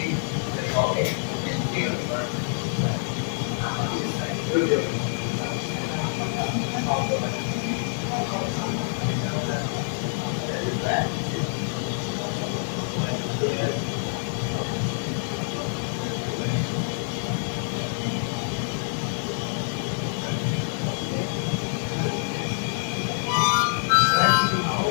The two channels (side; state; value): right; silent; 61 dB below the other